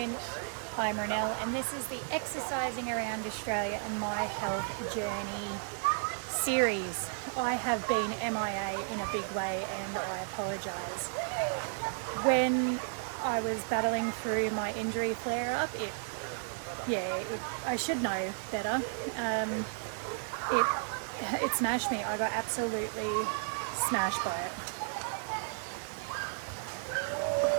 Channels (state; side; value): silent; left; digital silence